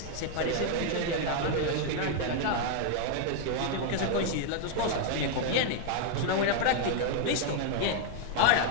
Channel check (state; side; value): different; both; correlation 0.00